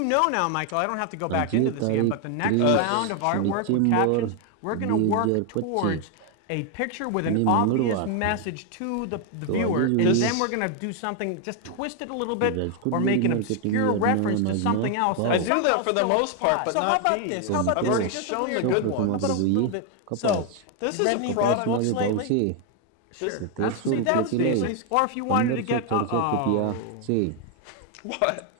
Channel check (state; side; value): different; both; correlation 0.01